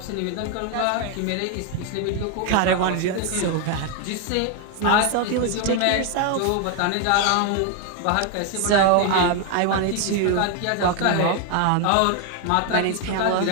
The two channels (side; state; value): both; different; correlation 0.01